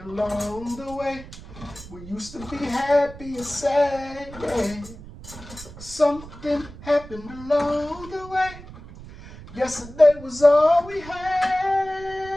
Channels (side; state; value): right; noise; rumble, 16 dB below the sound